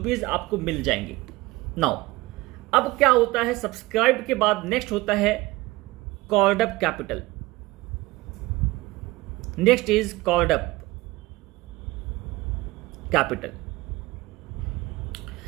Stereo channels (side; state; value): left; quieter; 20.3 dB